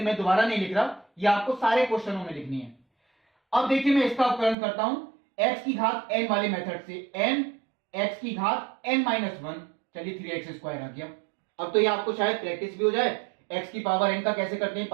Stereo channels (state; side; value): drops out; left; at 4.5 s